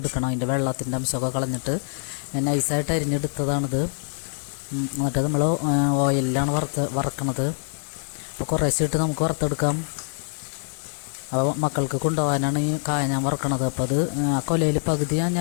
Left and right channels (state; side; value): silent; right; digital silence